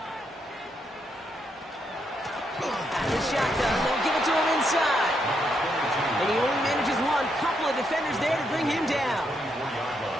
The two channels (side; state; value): both; normal; correlation 0.78